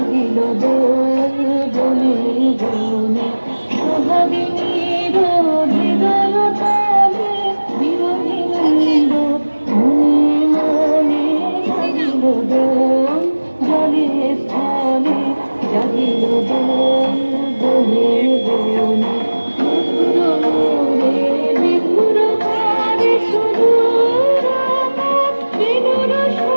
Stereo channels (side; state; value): both; inverted; correlation -1.00